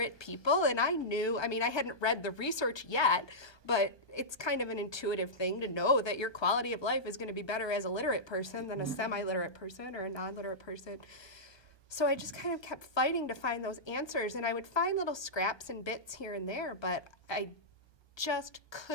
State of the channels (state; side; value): late; right; 1.2 ms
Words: people. And I knew, I mean, I hadn't read the research yet, but it's kind of an intuitive thing to know that your quality of life is going to be better as a literate person than a semi-literate person or a non-literate person. So I just kind of kept fighting to find those answers, and I would find little scraps and bits here and there, but I just